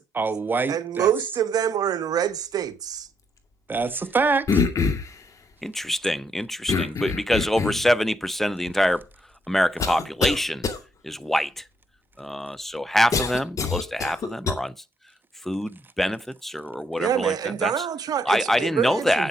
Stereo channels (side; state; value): both; normal; correlation 0.75